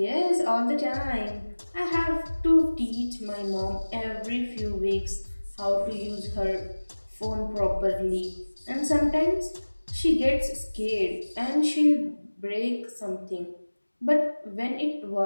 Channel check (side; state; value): both; inverted; correlation -1.00